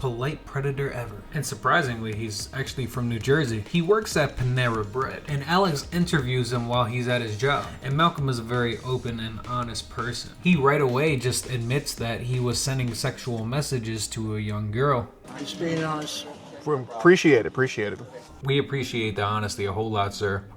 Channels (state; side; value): identical; both; correlation 1.00